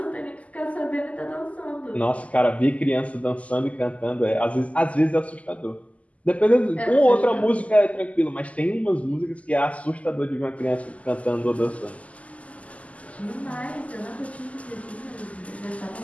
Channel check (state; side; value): late; right; 0.069 ms